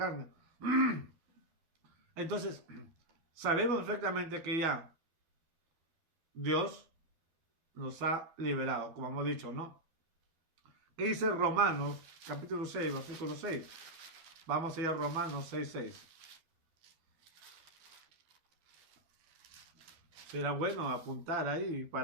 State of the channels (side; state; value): left; late; 12 ms